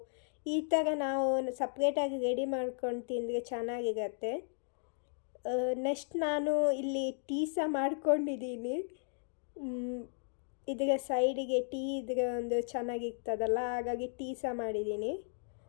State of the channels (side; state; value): right; silent; digital silence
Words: ಈ ಥರ ನಾವು ಸಪ್ರೇಟಾಗಿ ರೆಡಿ ಮಾಡ್ಕೊಂಡು ತಿಂದರೆ ಚೆನ್ನಾಗಿರುತ್ತೆ. ನೆಕ್ಸ್ಟ್ ನಾನು ಇಲ್ಲಿ ಟೀ ಸಹ ಮಾಡ್ಕೊಂಡಿದ್ದೀನಿ. ಇದರ ಸೈಡಿಗೆ ಟೀ ಇದ್ರೆ ಒಂದು ಚೆನ್ನಾಗಿರ್ತದಲ್ಲ, ಹಾಗಾಗಿ ಟೀ ಸಹ ಮಾಡಿದ್ದೀನಿ.